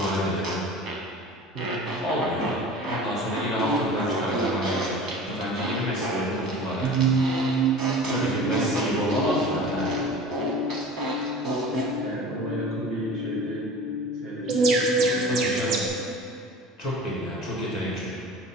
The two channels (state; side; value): normal; both; correlation 0.39